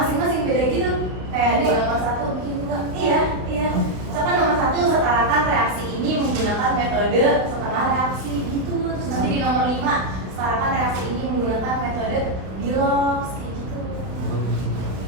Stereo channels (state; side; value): late; left; 32 ms